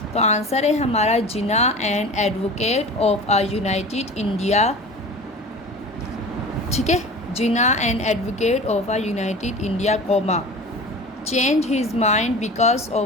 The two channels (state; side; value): normal; both; correlation 0.36